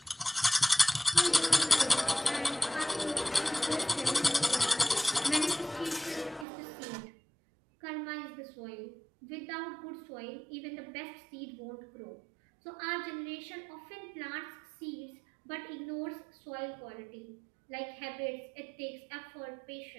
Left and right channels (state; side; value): drops out; left; at 6.5 s